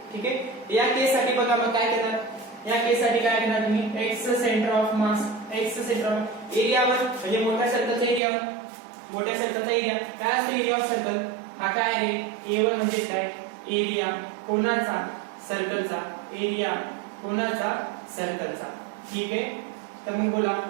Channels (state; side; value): drops out; left; at 8.2 s